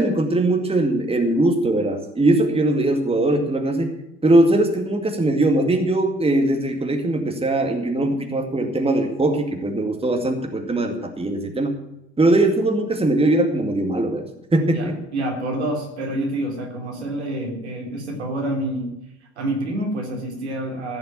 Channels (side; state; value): both; normal; correlation 0.64